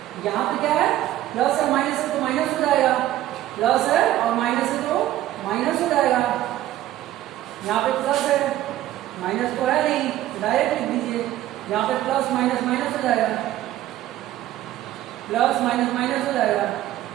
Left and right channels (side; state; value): left; quieter; 13.8 dB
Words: यहाँ पे क्या है प्लस है माइनस है तो माइनस हो जाएगा, प्लस है और माइनस है तो माइनस हो जाएगा। यहाँ पे प्लस है, माइनस तो है नहीं, डायरेक्ट लिख दीजिए, यहाँ पे प्लस माइनस माइनस हो जाएगा, प्लस माइनस माइनस हो जाएगा।